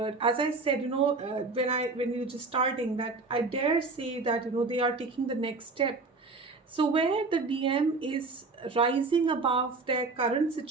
As I said, when we were just starting, that I dare say that they are taking the next step. So where the DM is rising above their current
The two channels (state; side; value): quieter; left; 3.8 dB